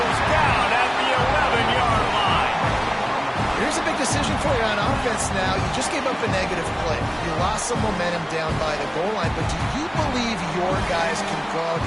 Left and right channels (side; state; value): both; identical; correlation 1.00